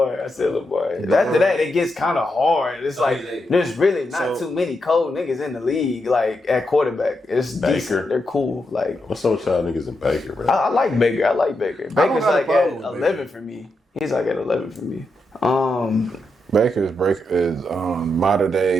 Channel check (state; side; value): normal; both; correlation 0.84